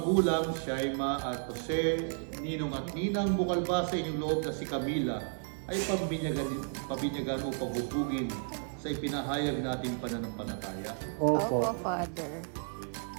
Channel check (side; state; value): left; silent; digital silence